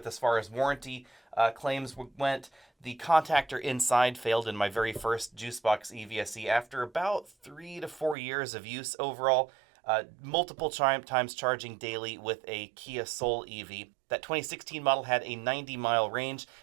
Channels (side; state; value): left; drops out; at 8.2 s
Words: as far as warranty claims went. The contactor inside failed in my very first JuiceBox EVSE after about 3 to 4 years of use overall. Multiple times charging daily with a Kia Soul EV. That 2016 model had a 90-mile range.